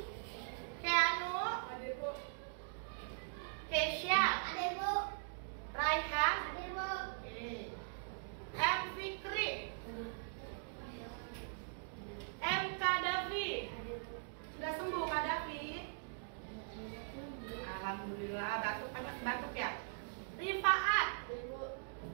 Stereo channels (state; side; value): silent; left; digital silence